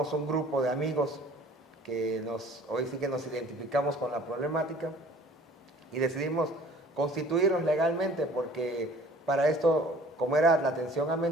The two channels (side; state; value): both; normal; correlation 0.50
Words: un grupo de amigos que hoy sí que nos identificamos con la problemática y decidimos constituirnos legalmente, porque para esto, como era la atención a